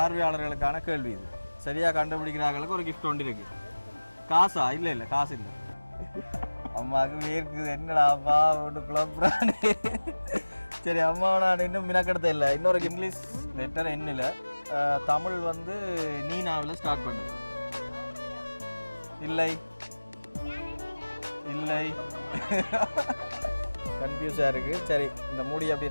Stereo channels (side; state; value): both; inverted; correlation -1.00